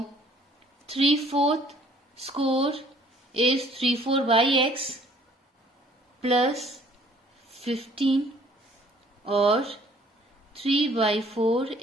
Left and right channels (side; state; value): both; normal; correlation 0.58